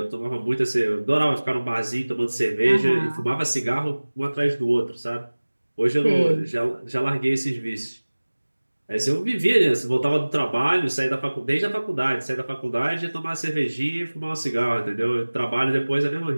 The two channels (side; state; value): both; inverted; correlation -1.00